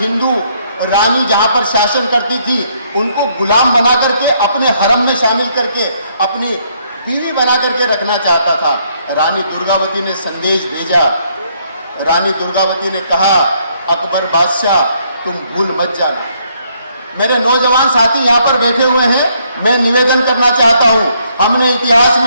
रानी जहां पर शासन करती थी उनको गुलाम बना करके अपने हरम में शामिल करके अपनी बीवी बना करके रखना चाहता था। रानी दुर्गावती ने संदेश भेजा। रानी दुर्गावती ने कहा, अकबर बादशाह तुम भूल मत जाना। मेरे नौजवान साथी यहाँ पर बैठे हुए हैं, मैं निवेदन करना चाहता हूँ, हमने इतिहास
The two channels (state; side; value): inverted; both; correlation -0.70